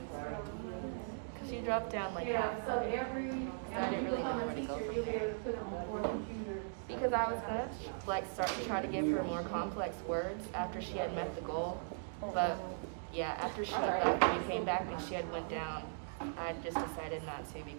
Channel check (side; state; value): left; silent; digital silence